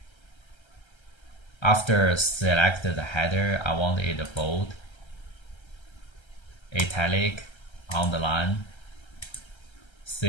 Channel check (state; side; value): late; right; 1.3 ms